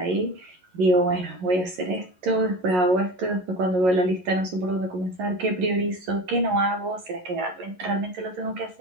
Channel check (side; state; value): left; late; 11 ms